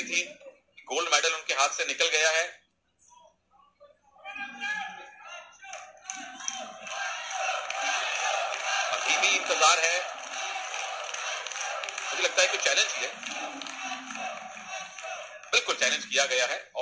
थी, गोल्ड मेडल उनके हाथ से निकल गया है। अभी भी इंतजार है, मुझे लगता है कि चैलेंज किया, बिल्कुल चैलेंज किया गया है।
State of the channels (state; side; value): identical; both; correlation 1.00